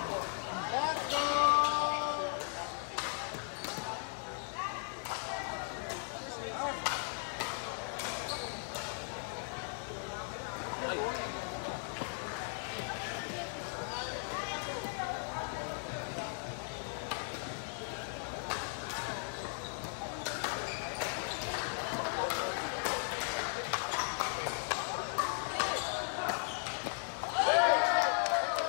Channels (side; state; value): right; silent; 53 dB below the other